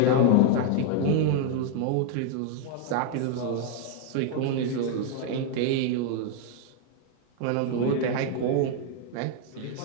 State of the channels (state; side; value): different; both; correlation 0.00